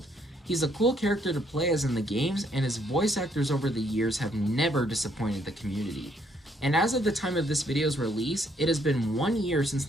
He's a cool character to play as in the games, and his voice actors over the years have never disappointed the community. And as of the time of this video's release, it has been 1 year since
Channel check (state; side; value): normal; both; correlation 0.69